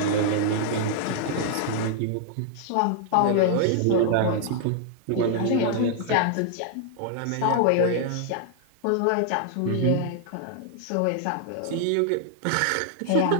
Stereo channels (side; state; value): both; different; correlation -0.01